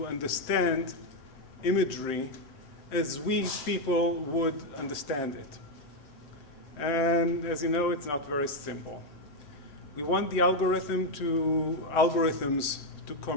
understand imagery as we people would understand it. And as you know, it's not very simple. We want the algorithms to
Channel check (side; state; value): right; late; 6.9 ms